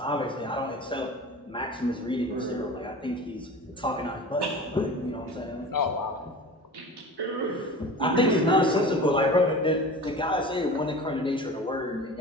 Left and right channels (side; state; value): both; normal; correlation 0.36